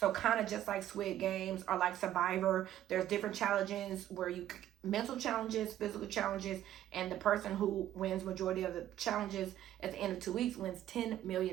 kind of just like Squid Games or like Survivor. There's different challenges where you mental challenges, physical challenges, and the person who wins majority of the challenges at the end of 2 weeks wins $10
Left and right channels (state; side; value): quieter; left; 12.4 dB